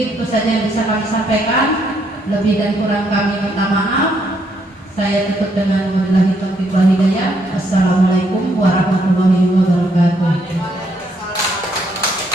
itu saja yang bisa kami sampaikan. Lebih dan kurang kami minta maaf. Saya tutup dengan wabillahi taufiq wal hidayah. Assalamualaikum warahmatullahi wabarakatuh.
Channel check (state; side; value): normal; both; correlation 0.73